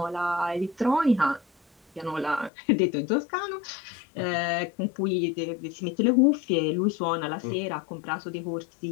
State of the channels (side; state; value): right; drops out; at 2.5 s